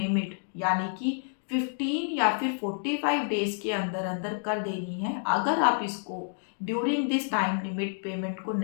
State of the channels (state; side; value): silent; right; 59 dB below the other